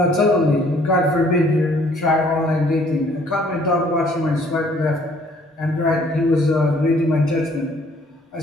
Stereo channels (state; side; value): normal; both; correlation 0.60